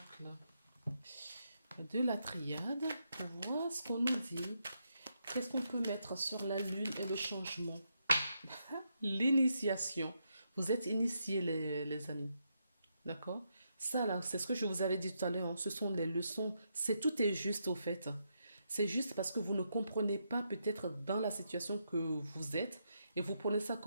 de la triade pour voir ce qu'on nous dit. Qu'est-ce qu'on peut mettre sur la lune et le changement? L'initiation. Vous êtes initiés, les amis. D'accord? Ça, là, c'est ce que je vous avais dit tout à l'heure, hein. Ce sont les leçons. Tout est juste, au fait. C'est juste parce que vous ne comprenez pas peut-être dans la situation que vous êtes et vous prenez ça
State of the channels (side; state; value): both; inverted; correlation -0.81